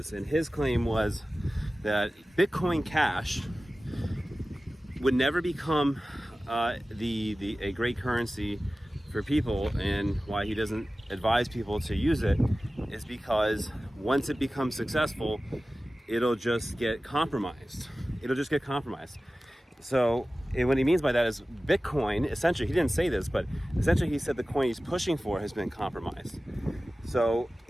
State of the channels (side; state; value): both; normal; correlation 0.96